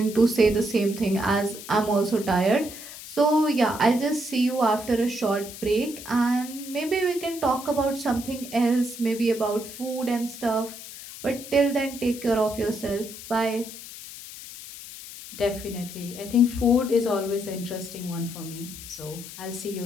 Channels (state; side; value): noise; left; hiss, 13 dB below the sound